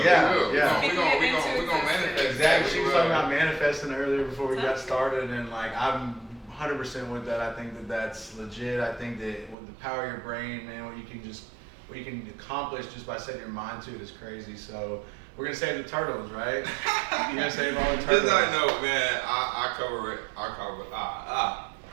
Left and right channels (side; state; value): left; drops out; at 9.6 s